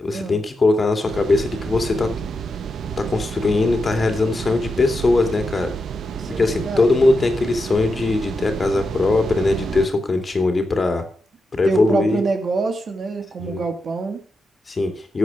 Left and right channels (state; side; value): normal; both; correlation 0.87